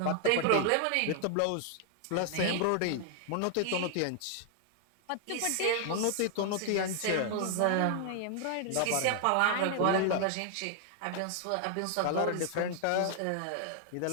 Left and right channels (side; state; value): both; different; correlation 0.00